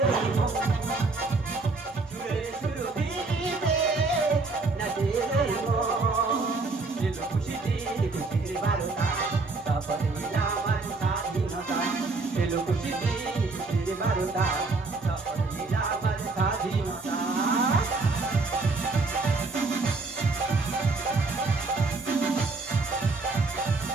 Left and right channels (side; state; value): left; quieter; 3.7 dB